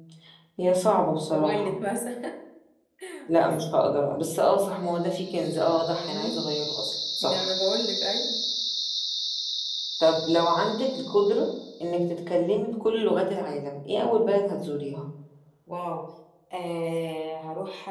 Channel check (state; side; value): identical; both; correlation 1.00